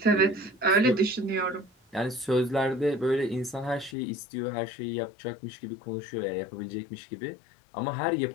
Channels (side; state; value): right; drops out; at 4.0 s